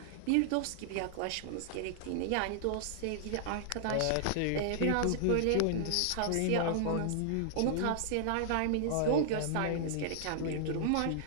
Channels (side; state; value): both; different; correlation -0.01